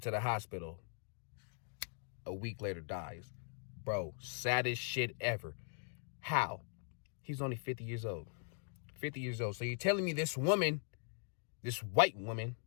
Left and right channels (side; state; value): right; silent; 51 dB below the other